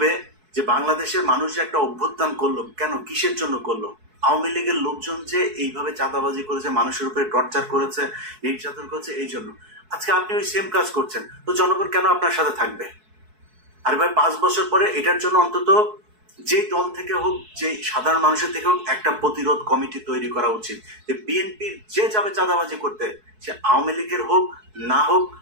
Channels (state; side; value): late; left; 4.6 ms